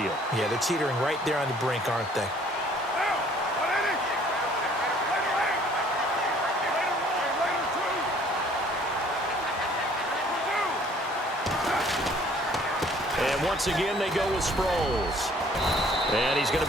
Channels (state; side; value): normal; both; correlation 0.57